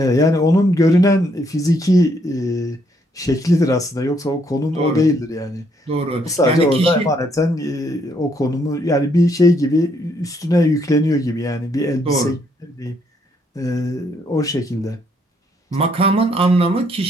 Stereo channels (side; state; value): both; normal; correlation 0.71